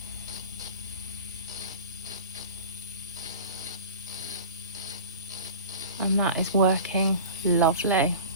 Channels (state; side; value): inverted; both; correlation -0.35